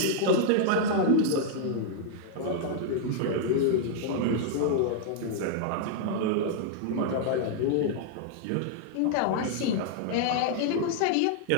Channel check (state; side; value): different; both; correlation -0.01